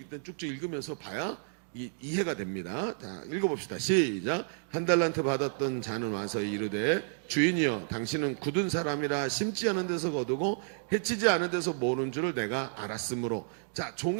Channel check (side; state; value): left; silent; digital silence